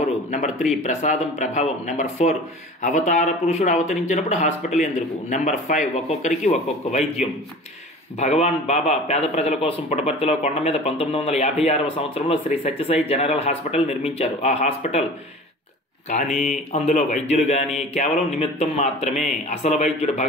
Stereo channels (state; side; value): normal; both; correlation 0.40